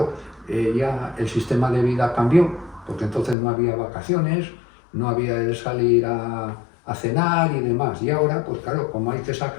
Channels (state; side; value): drops out; right; at 3.4 s